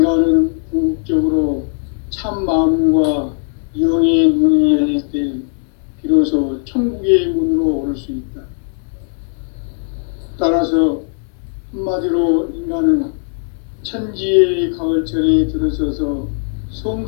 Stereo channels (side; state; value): right; silent; 60 dB below the other